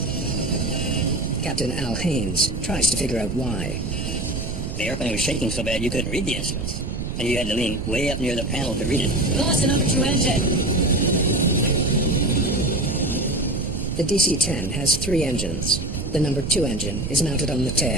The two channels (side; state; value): right; noise; rumble, 4 dB below the sound